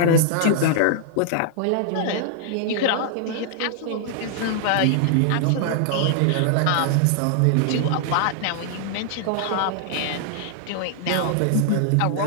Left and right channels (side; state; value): both; different; correlation -0.01